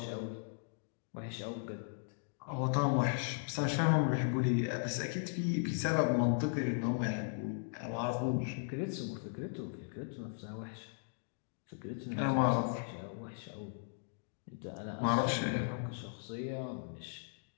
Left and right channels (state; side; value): silent; right; digital silence